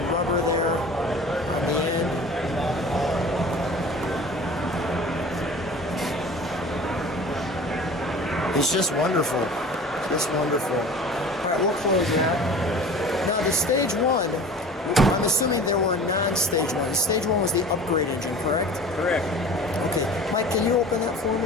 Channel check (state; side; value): normal; both; correlation 0.41